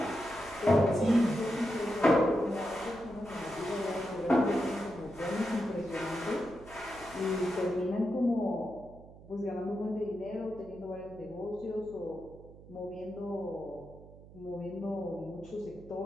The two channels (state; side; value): noise; right; hum, 19 dB below the sound